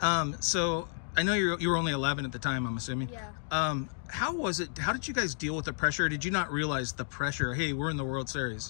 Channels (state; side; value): silent; right; digital silence